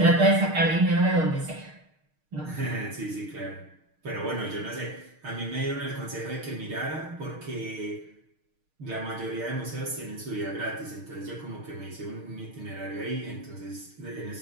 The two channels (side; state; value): left; late; 6.5 ms